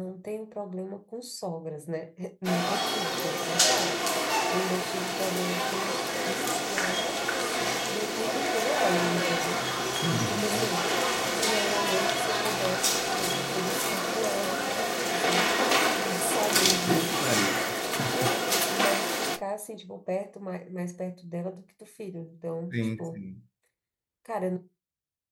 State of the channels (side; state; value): both; identical; correlation 1.00